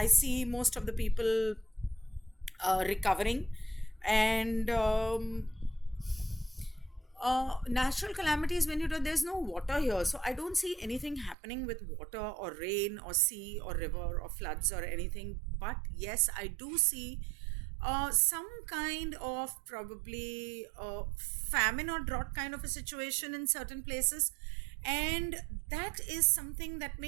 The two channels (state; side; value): drops out; left; at 11.4 s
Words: see most of the people recovering, and natural calamities, when there's no water here, so I don't see anything happening with water or rain or sea or river or floods or anything. But yes, I do see some kind of probably famine or drought kind of a situation in certain places, and that is something that